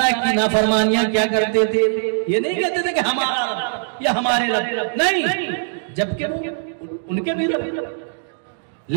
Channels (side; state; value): left; silent; digital silence